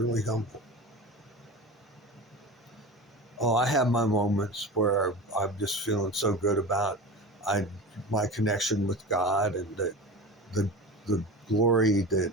humble. Oh, I have my moments where I'm just feeling so good about I my connection with God, and the the glory that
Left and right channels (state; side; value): normal; both; correlation 0.30